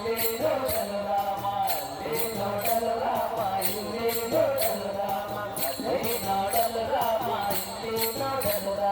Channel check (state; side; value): identical; both; correlation 1.00